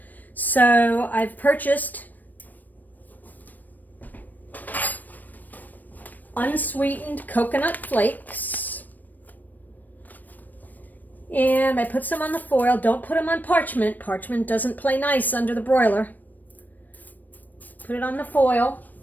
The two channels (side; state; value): right; late; 0.086 ms